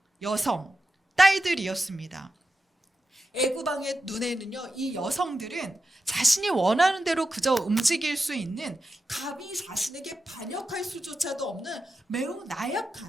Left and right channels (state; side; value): normal; both; correlation 0.90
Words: 여성, 딸들이었습니다. 애굽 왕의 눈에는요, 이 여성들은 자신이 원하는 대로 그저 움직일 수 있는, 감히 자신에게 반역할 수조차도 없는 매우